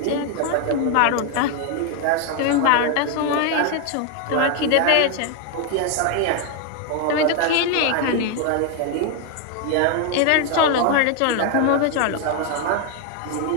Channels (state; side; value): different; both; correlation 0.01